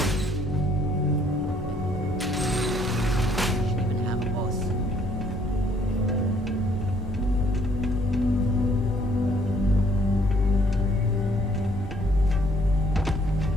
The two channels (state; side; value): normal; both; correlation 0.64